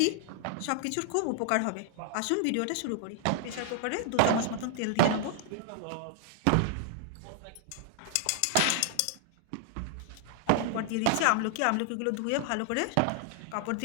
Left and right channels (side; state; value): both; different; correlation 0.00